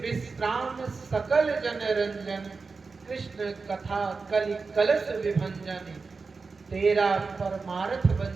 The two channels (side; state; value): left; quieter; 4.4 dB